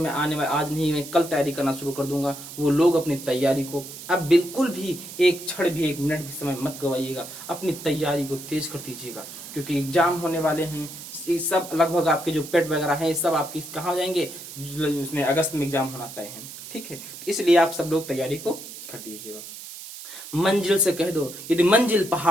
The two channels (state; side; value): noise; right; hiss, 13 dB below the sound